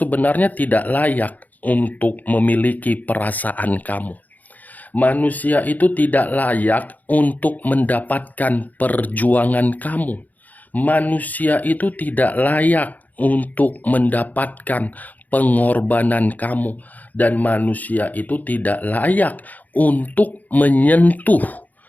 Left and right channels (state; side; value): late; right; 0.080 ms